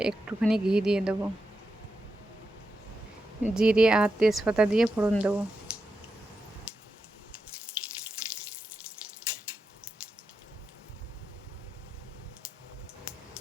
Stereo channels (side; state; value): both; normal; correlation 0.87